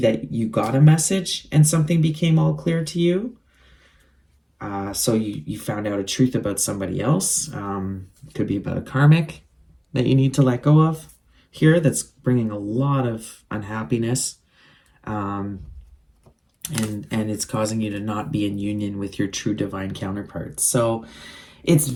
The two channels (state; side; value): identical; both; correlation 1.00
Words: that you got a message and something became all clear to you. So you found out a truth about somebody else. It could be about a karmic that you need to let go of here, that's bringing a lot of unhappiness. And it's causing you to not be in union with your true divine counterpart. So it's